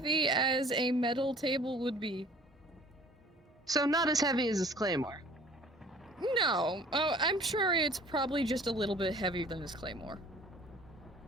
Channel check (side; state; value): both; normal; correlation 0.50